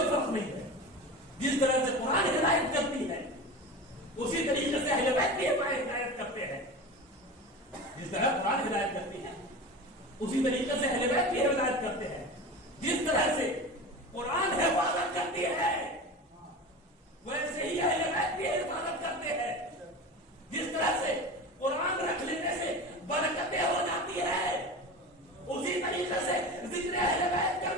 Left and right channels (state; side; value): normal; both; correlation 0.30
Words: فرق نہیں ہے. جس طرح سے قرآن ہدایت کرتی ہے اسی طریقے سے اہل بیت بھی ہدایت کرتے ہیں. جس طرح قرآن ہدایت کرتی ہے اسی طریقے سے اہل بیت بھی ہدایت کرتے ہیں. جس طرح سے قرآن حفاظت کرتی ہے ویسے ہی اہل بیت بھی حفاظت کرتے ہیں. جس طرح سے قرآن رکھ لینے سے برکتیں ہو جاتی ہے اسی طریقے سے ذکر اہل بیت